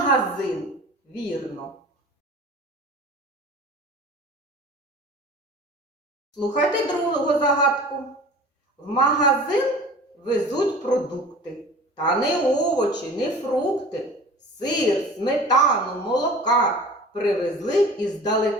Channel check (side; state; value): both; normal; correlation 0.41